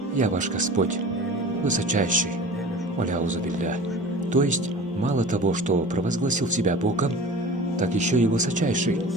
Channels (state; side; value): normal; both; correlation 0.39